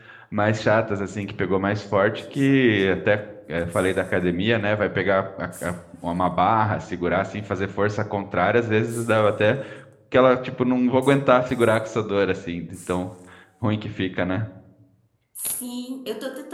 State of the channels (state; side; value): identical; both; correlation 1.00